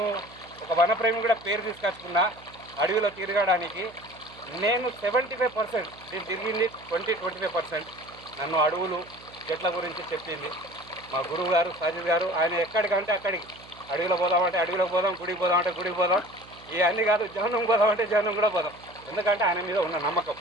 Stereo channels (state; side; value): noise; right; hum, 22 dB below the sound